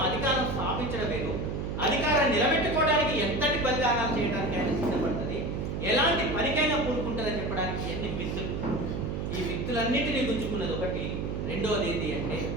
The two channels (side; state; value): right; noise; hum, 3 dB below the sound